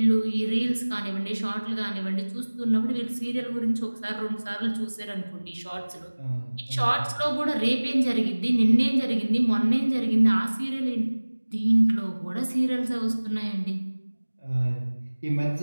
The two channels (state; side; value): inverted; both; correlation -1.00